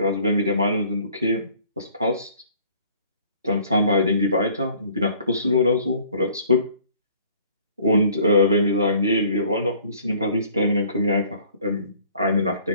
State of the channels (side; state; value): both; inverted; correlation -0.55